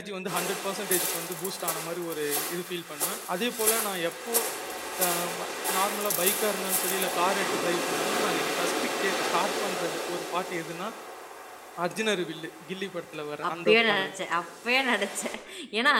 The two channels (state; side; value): identical; both; correlation 1.00